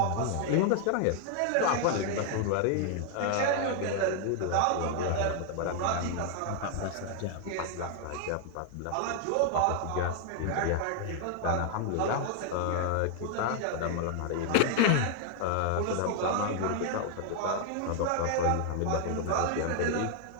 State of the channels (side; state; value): both; different; correlation 0.00